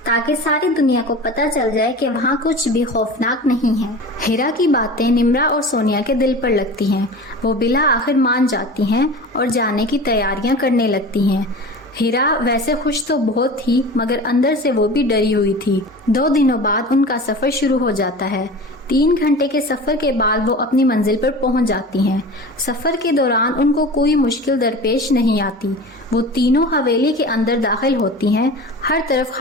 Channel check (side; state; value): both; normal; correlation 0.35